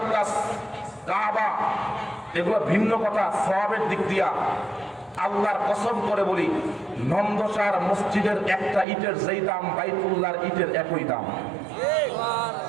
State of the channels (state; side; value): drops out; left; at 8.8 s